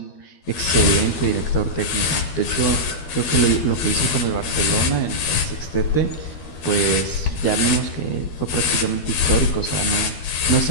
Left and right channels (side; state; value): right; late; 12 ms